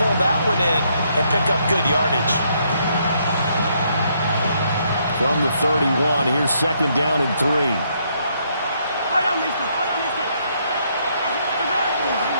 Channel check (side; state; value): both; inverted; correlation -0.72